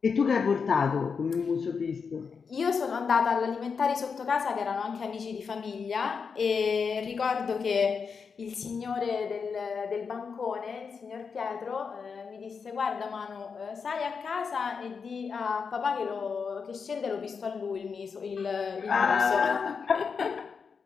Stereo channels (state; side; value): quieter; right; 5.7 dB